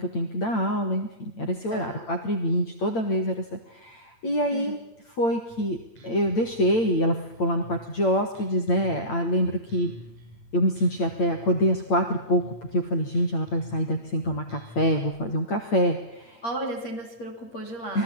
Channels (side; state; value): right; late; 8.8 ms